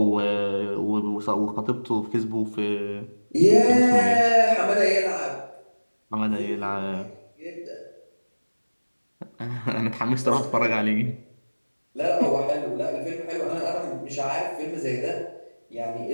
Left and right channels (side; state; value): both; inverted; correlation -1.00